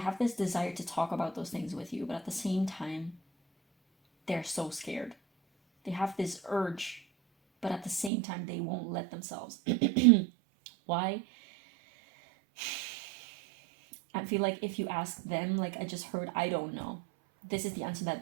this desire to talk about those things with you, but at the same time, they're so scared. They have this urge, but at the same time, they won't let themselves. Why? I feel like if you ask them, like I just heard, I don't know. This is the answer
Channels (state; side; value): drops out; left; at 8.1 s